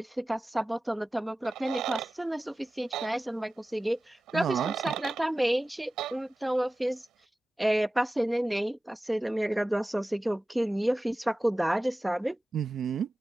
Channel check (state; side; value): normal; both; correlation 0.95